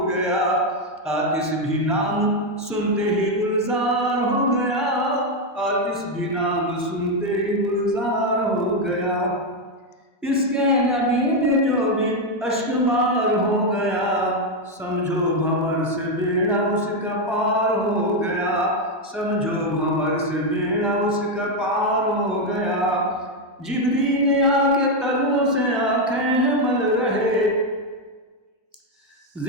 गया, आतिश भी नाम सुनते ही गुलजार हो गया, आतिश भी नाम सुनते ही गुलजार हो गया, इश्क़े नबी में जो भी अश्क बार हो गया, समझो भंवर से बेड़ा उसका पार हो गया, समझो भंवर से बेड़ा उसका पार हो गया, जिब्रील आके तलवों से आंखें मल रहे,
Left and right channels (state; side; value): normal; both; correlation 0.04